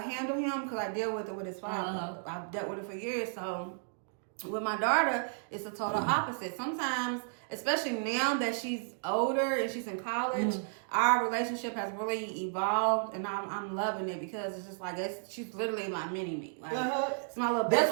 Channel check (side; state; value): left; silent; digital silence